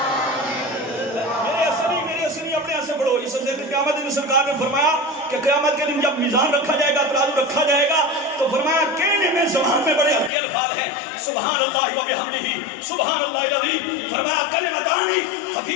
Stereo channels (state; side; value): drops out; right; at 10.3 s